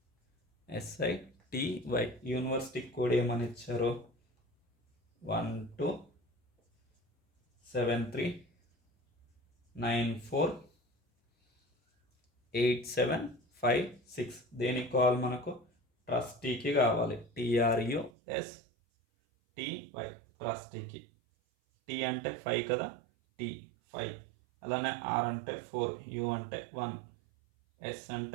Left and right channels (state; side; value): drops out; left; at 18.1 s